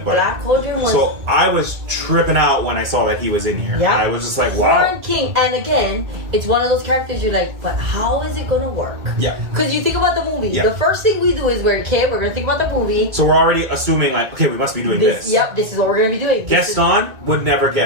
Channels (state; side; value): late; left; 2.3 ms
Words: But Black Cauldron was... So I was tripping out when I saw that he was in here. I was just like, wow. Horned King. And again, it's one of those characters you're like, but how is it going to work? Yeah. Because you think about the movie. The first thing we do is we're going to think about the movie. So we're already assuming like, okay, we must be doing this. Yep, this is what we're going to be doing. Gaston would never